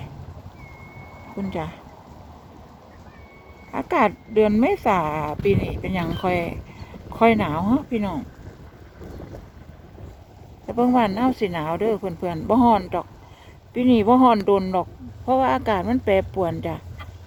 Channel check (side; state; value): both; identical; correlation 1.00